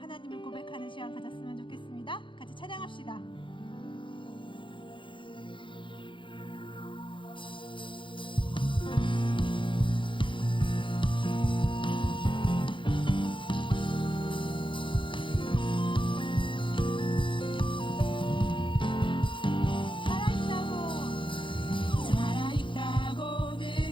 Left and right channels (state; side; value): late; right; 0.24 ms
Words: 고백하는 시간 가졌으면 좋겠습니다. 같이 찬양합시다. 살아있다고